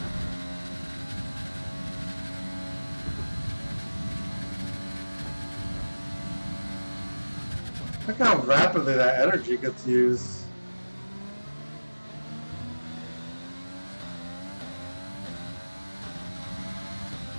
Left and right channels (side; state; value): both; inverted; correlation -1.00